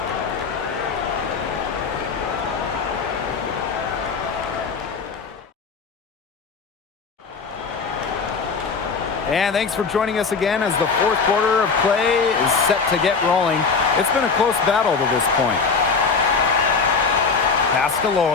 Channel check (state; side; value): quieter; right; 5.0 dB